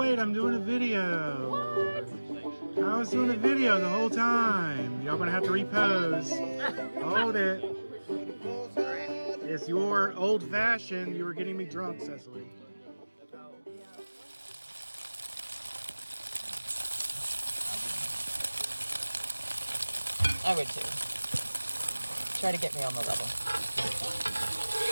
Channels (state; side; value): inverted; both; correlation -1.00